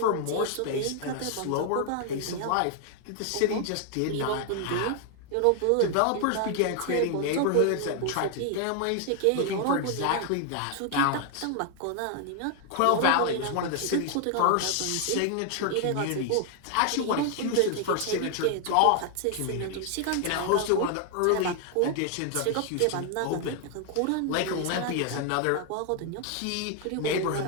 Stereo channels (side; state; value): both; different; correlation 0.00